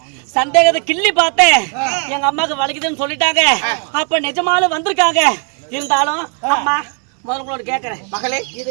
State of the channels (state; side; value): quieter; left; 38.4 dB